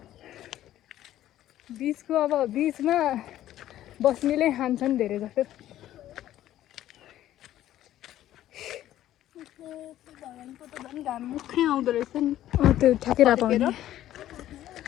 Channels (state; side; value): quieter; right; 13.0 dB